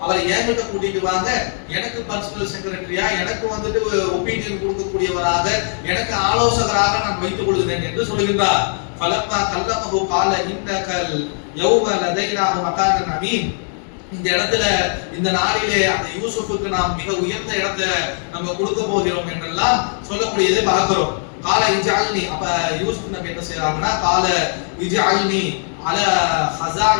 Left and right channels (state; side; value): silent; right; 60 dB below the other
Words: அவரை என்கிட்ட கூட்டிட்டு வாங்க, எனக்கு பர்சனல் செக்ரட்டரியா, எனக்கு வந்துட்டு ஒப்பீனியன் கொடுக்கக்கூடியவராக, எனக்கு ஆலோசகராக நான் வைத்துக் கொள்கிறேன் என்று சொல்கின்றார். ஃபலம்மா கல்லமஹு கால இன்னகல் யௌம லதைனா மகானன் அமீன். இந்த இடத்துல இந்த நாளிலே அந்த யூசுஃபுக்கு நாம் மிக உயர்ந்த இடத்தை நம்ம கொடுக்க போகிறோம் என்றெல்லாம் சொல்லக்கூடியதை பார்க்கிறோம். கால இஜஅல்னி, அப்ப யூசுப் நபி என்ன செய்றாங்கன்னா, கால இஜஅல்னி அல